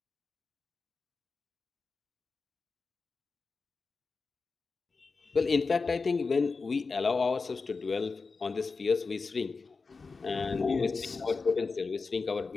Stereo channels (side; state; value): right; quieter; 4.4 dB